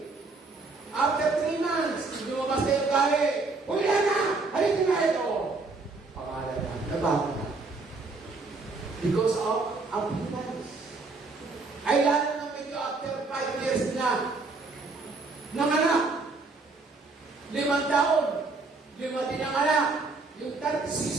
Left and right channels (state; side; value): quieter; left; 3.7 dB